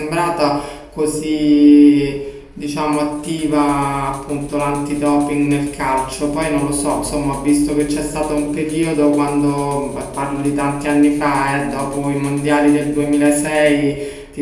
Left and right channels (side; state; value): both; identical; correlation 1.00